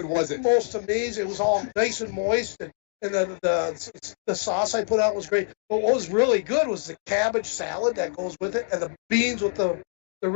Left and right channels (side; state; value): right; silent; digital silence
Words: was it? Most amazing. It was all nice and moist, and the sauce I put out was great. But what was really good was the cabbage salad that goes with it, and the beans with the